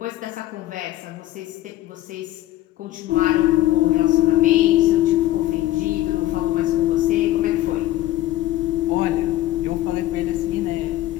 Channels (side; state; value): right; quieter; 14.8 dB